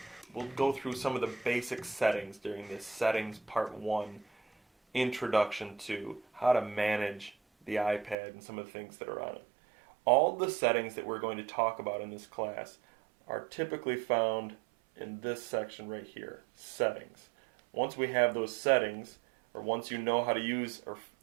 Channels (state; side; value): drops out; left; at 8.2 s